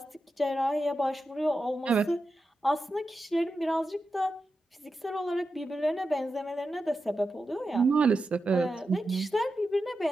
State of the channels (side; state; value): both; normal; correlation 0.90